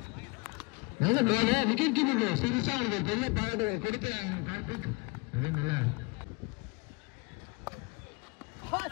விக்கெட் கீப்பர் சீரியஸா அவங்களுக்கு பெரிய பாராட்டுகள் கொடுக்கிறாங்க. கார்த்திக் அதே நல்லா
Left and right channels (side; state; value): right; quieter; 28.4 dB